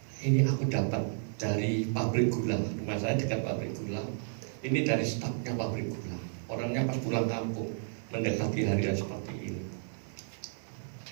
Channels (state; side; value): silent; left; digital silence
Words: ini aku dapat dari pabrik gula, rumah saya dekat pabrik gula. Ini dari stafnya pabrik gula. Orangnya pas pulang kampung mendekati hari seperti ini.